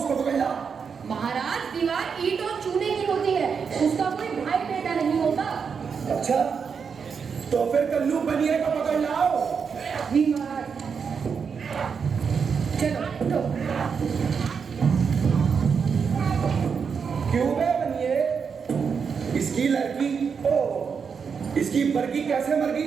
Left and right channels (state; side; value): quieter; left; 6.1 dB